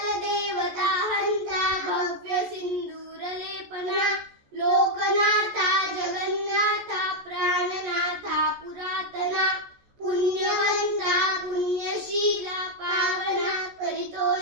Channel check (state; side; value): late; left; 14 ms